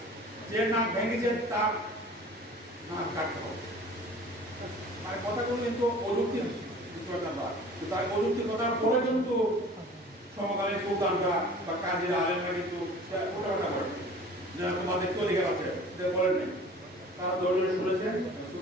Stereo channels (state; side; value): normal; both; correlation 0.45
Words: যে নাক ভেঙেছে তার নাক কাটতে হবে। মানে কথাগুলো কিন্তু অযুক্তি, তার অযুক্তি কথার পরে কিন্তু সমকালীন সুলতানরা বা কাজীরা আলেমরা কিন্তু ওটা করে যে তোমাদের তো অধিকার আছে বলেন নাই। তারা দৌড়ে শুনেছেন,